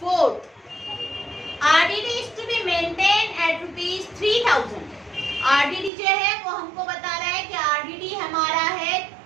4। RDD is to be maintain at ₹3000। RDD जो है वो हमको बता रहा है कि आरडीडी हमारा है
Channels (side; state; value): left; drops out; at 5.9 s